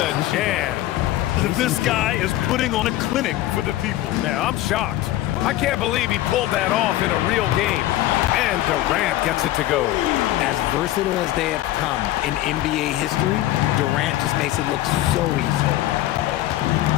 jam. This guy is putting on a clinic for the people. Yeah, I'm shocked. I can't believe he pulled that off in a real game. And Durant gets it to go. As versatile as they have come in NBA history, Durant just makes it look so easy.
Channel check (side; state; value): right; quieter; 15.0 dB